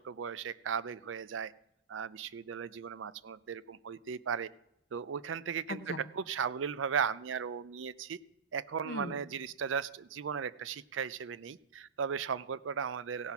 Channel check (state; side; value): quieter; left; 6.2 dB